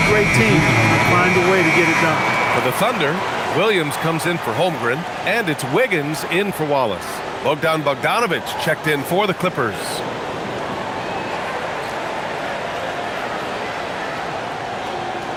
great teams find a way to get it done. For the Thunder, Williams comes in for Holmgren, and it's Wiggins in for Wallace. Bogdan Bogdanovic checked in for the Clippers.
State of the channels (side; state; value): both; identical; correlation 1.00